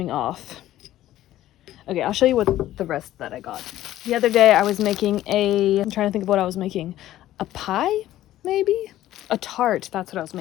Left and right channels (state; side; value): quieter; right; 13.9 dB